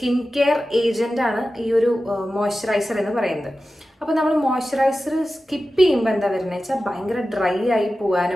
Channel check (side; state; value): both; normal; correlation 0.94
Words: കെയർ ഏജൻ്റ് ആണ് ഈ ഒരു മോയ്സ്ചറൈസർ എന്ന് പറയുന്നത്. അപ്പോൾ നമ്മൾ മോയ്സ്ചറൈസർ സ്കിപ്പ് ചെയ്യുമ്പോൾ എന്താ വരുന്നത് വെച്ചാൽ ഭയങ്കര ഡ്രൈ ആയി